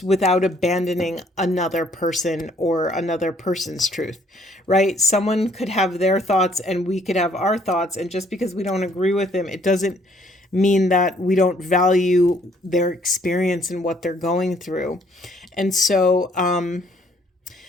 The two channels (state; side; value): normal; both; correlation 0.64